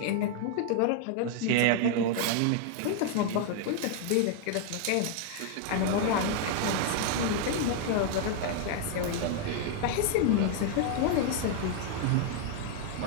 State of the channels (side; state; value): both; different; correlation 0.00